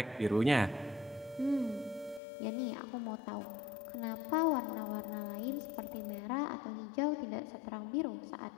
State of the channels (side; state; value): right; drops out; at 2.2 s